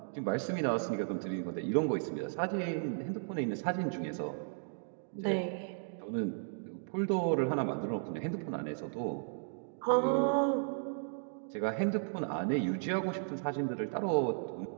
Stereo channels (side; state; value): left; silent; digital silence